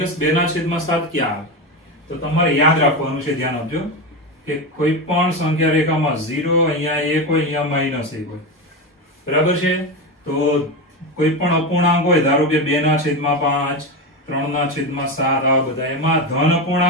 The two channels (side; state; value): both; normal; correlation 0.17